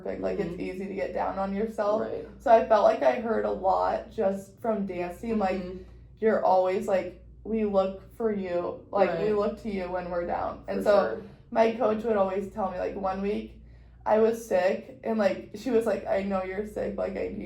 like, it's easy to get down on yourself. So I felt like I heard a lot just from dancing, like, you're always, like, we look for you, like, we look to you when we're down. And my coach would always tell me, like, one week I was sick, and, like, she was like, I know you're sick, like, I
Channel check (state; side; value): identical; both; correlation 1.00